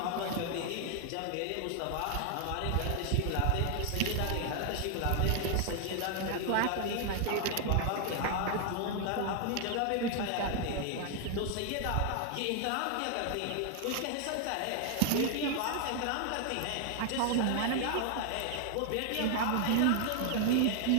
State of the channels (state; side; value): different; both; correlation 0.00